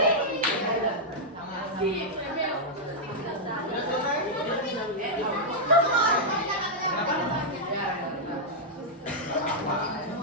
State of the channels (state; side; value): normal; both; correlation -0.06